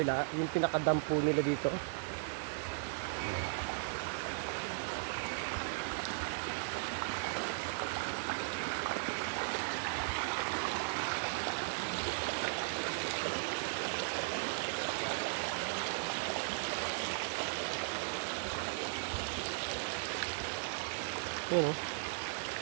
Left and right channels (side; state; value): left; silent; digital silence